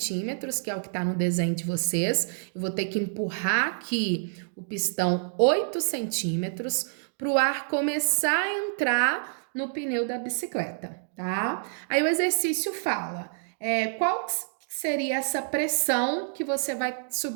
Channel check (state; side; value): silent; left; digital silence